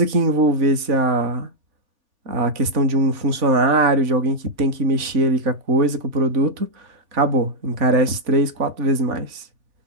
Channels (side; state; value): left; late; 3.5 ms